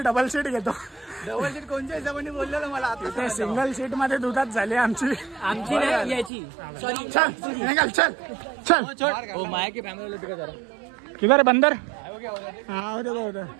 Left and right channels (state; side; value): drops out; left; at 6.3 s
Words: डबल सीट घेतो. डबल सीट कोणत्या हिशोबाने बोललेलो मला आता. ते सिंगल सीट मध्ये दुधात झाली आमची नाही याची. चल निघाल. चल ओ माया की फॅमिली टिका जरा. किधर बंदर.